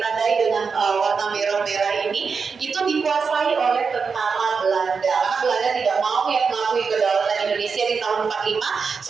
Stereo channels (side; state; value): left; quieter; 5.4 dB